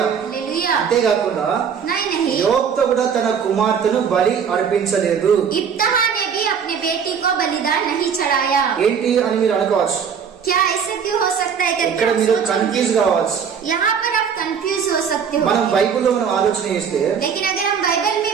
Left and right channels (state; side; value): quieter; left; 7.0 dB